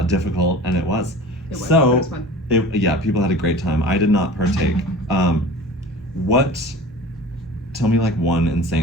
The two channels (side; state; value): both; normal; correlation 0.39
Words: difficult, and it was. It was. So, It was fun. Yeah, people had a great time. I did not partake. Tell me like one